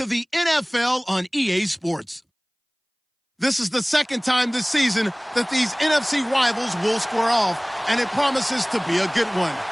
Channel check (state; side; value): identical; both; correlation 1.00